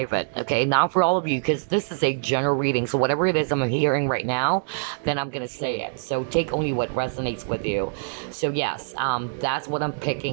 okay? Not for all of you, because this is a general reading. So whatever it is I'm hearing right now, then I'm gonna say it. So take only what resonates with you. So yes, that's what I'm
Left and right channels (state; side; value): silent; left; digital silence